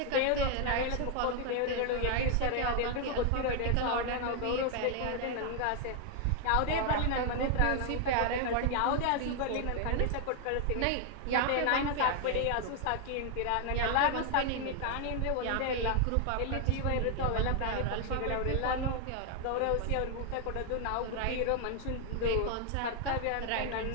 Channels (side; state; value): both; different; correlation 0.00